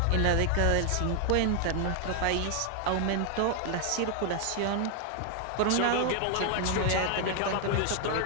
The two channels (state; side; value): different; both; correlation 0.00